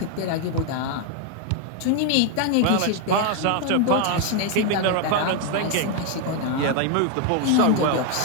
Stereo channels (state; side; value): different; both; correlation 0.01